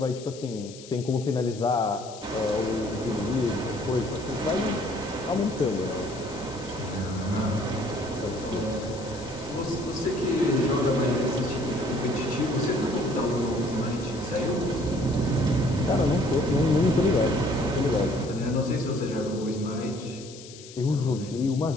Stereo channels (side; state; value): left; noise; hiss, 17 dB below the sound